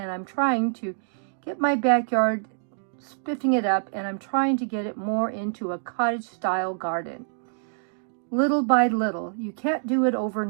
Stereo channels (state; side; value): silent; left; digital silence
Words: I'm trying to get my backyard spiffing it up, and I'm trying to get it more into a cottage style garden. Little by little. You can't do it